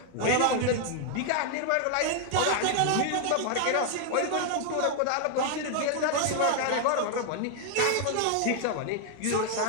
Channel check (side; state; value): both; different; correlation 0.00